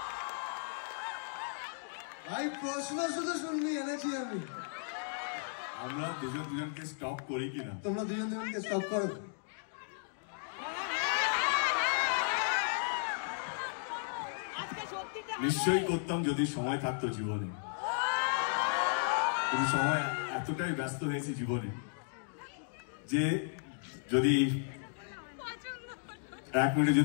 ভাই প্রশ্ন শুধু শুনবি এনেছি আমি। আমরা দুজনকে স্টপ করি কিনা? তোমরা দুজনকে স্টপ করো। নিশ্চয়ই করতাম যদি সময় থাকতো জীবনে, কিন্তু সময় এতটাই ব্যস্ত হয়েছে জীবনে যে যদি 1 মিনিটে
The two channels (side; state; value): right; silent; digital silence